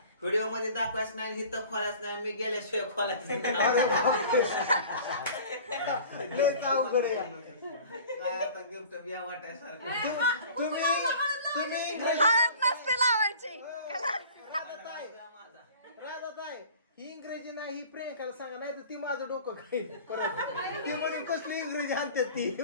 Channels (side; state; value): both; inverted; correlation -0.44